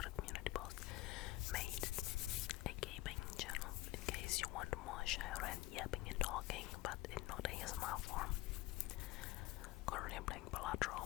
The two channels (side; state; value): right; quieter; 18.0 dB